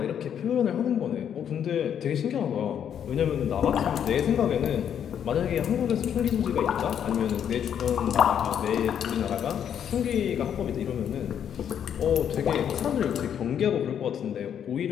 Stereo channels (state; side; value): quieter; right; 8.9 dB